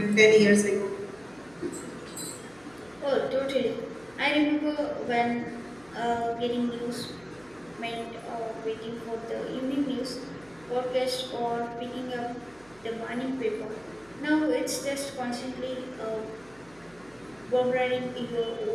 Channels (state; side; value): noise; right; hum, 27 dB below the sound